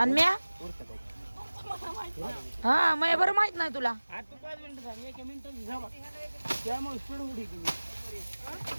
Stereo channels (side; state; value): both; inverted; correlation -1.00